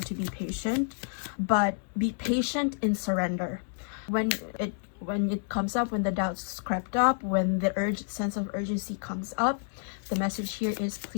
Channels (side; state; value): right; silent; 58 dB below the other